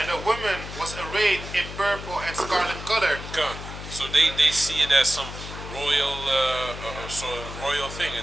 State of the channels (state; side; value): noise; left; hum, 10 dB below the sound